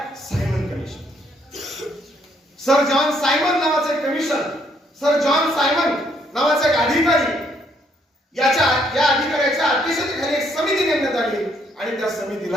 Simon commission. Sir John Simon नावाचं एक कमिशन, सर जॉन सायमन नावाचा एक अधिकारी, या अधिकाऱ्याच्या अध्यक्षतेखाली एक समिती नेमण्यात आली आणि त्या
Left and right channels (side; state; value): both; normal; correlation 0.70